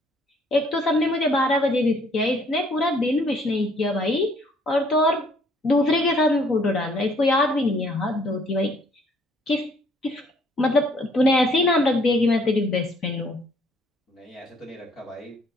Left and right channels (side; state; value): both; normal; correlation 0.62